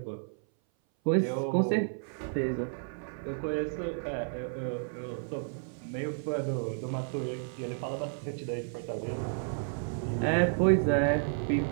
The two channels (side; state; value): left; silent; 57 dB below the other